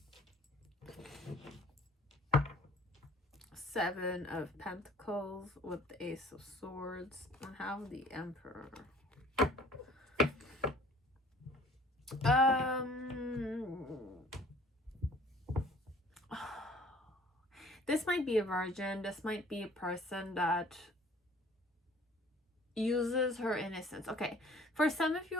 Seven of Pentacles with the Ace of Swords and have the Emperor. This might be a virgin. This might be a person that uses her innocence. Okay, for some of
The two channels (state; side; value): normal; both; correlation 0.52